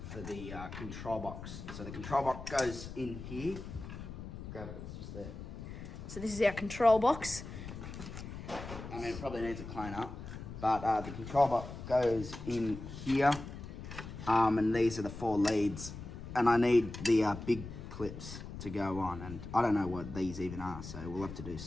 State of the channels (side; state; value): left; noise; rumble, 10 dB below the sound